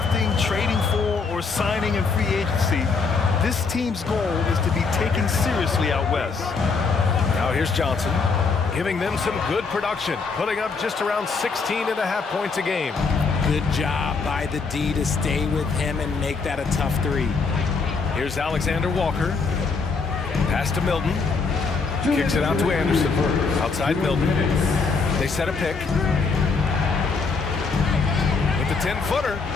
trading for, or signing in free agency, this team's goal is to be taken seriously out west. Now here's Johnson, giving them some good production, putting up just around 16.5 points a game. Good job by the D to stay with him and make that a tough three. Here's Alexander Walker. Pass to Milton. Kicks it out to Anderson. Outside Milton. They set a pick. With the 10-footer.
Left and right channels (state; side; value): quieter; right; 4.7 dB